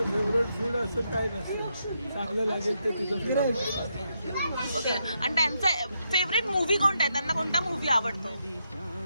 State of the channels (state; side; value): inverted; both; correlation -0.81